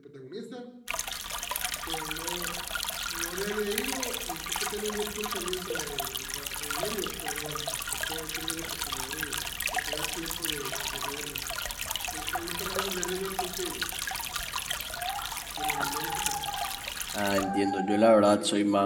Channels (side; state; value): both; identical; correlation 1.00